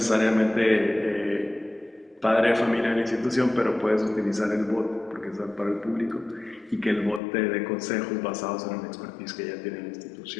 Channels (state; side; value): drops out; right; at 7.2 s